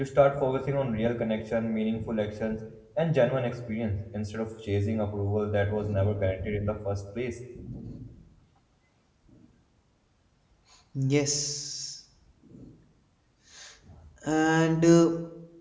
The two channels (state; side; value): identical; both; correlation 1.00